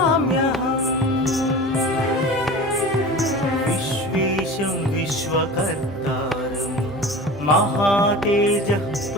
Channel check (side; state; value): both; normal; correlation 0.35